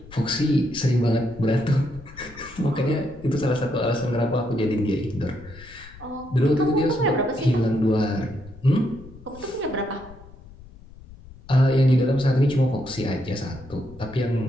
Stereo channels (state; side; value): noise; left; rumble, 20 dB below the sound